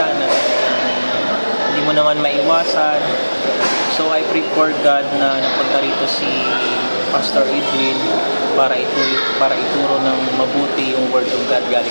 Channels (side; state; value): both; inverted; correlation -1.00